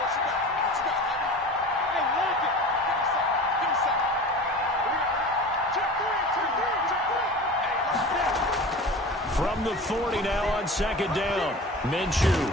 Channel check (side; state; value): both; normal; correlation 0.36